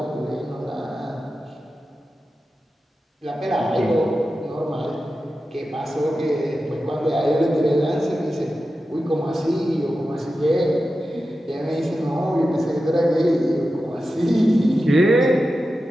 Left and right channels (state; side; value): normal; both; correlation 0.92